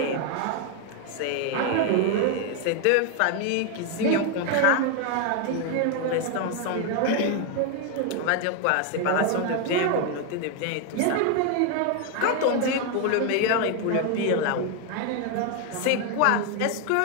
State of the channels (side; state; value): both; different; correlation 0.01